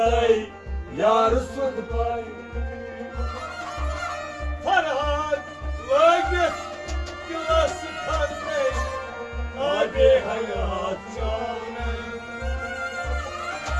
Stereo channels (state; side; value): identical; both; correlation 1.00